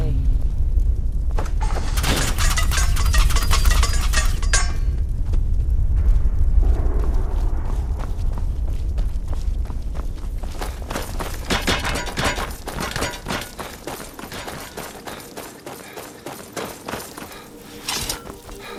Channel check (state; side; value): identical; both; correlation 1.00